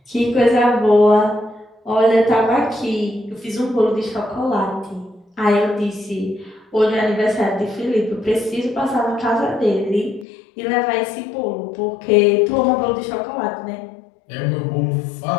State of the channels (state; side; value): drops out; right; at 10.2 s